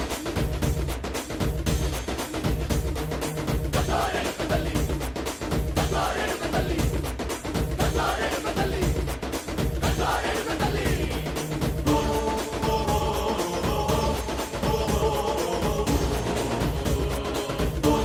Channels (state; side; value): identical; both; correlation 1.00